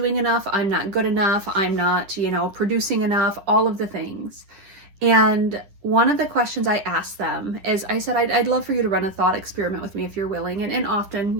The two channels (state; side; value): late; left; 10 ms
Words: enough, I'm not good enough, I'm not, producing enough, all of the things. And one of the questions I asked them is, I said, I'd love for you to run a thought experiment with me if you're willing. And